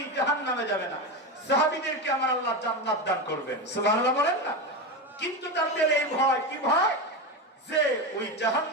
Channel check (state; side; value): normal; both; correlation 0.17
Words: জাহান্নামে যাবে না। সাহাবীদেরকে আমার আল্লাহ জান্নাত দান করবেন, সুবহানাল্লাহ বলেন না। কিন্তু তাদের এই ভয়, কি ভয়? যে ওই